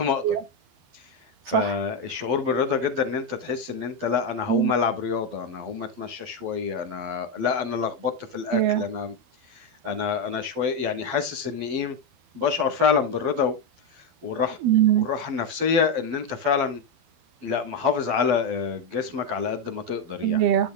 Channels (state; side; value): late; left; 12 ms